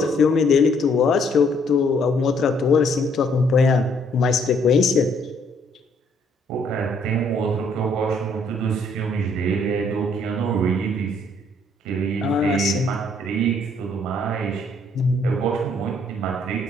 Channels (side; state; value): both; normal; correlation 0.66